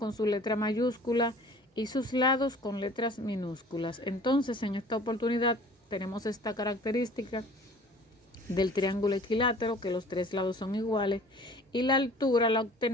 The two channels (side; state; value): both; normal; correlation 0.48